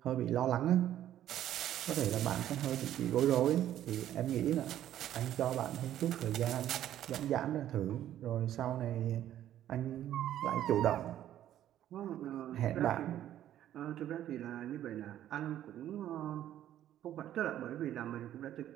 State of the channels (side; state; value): left; quieter; 11.9 dB